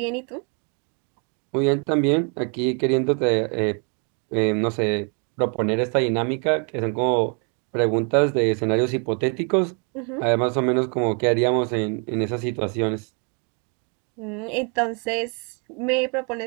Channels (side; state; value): left; quieter; 37.5 dB